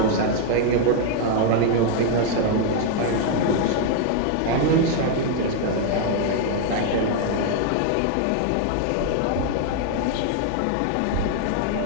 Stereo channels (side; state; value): both; different; correlation 0.00